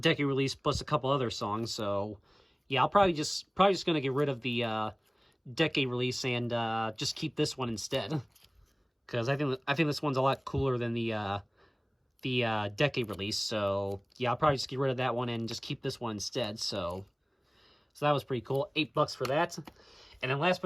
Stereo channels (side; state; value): both; identical; correlation 1.00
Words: release, plus a couple other songs. So yeah, I'll probably just gonna get rid of the decade release and just keep this one instead, because I think this one's a lot cooler than the decade release. So yeah, I'll probably just get rid of that one and just keep this one instead. So that was pretty cool. $8 for that. And then last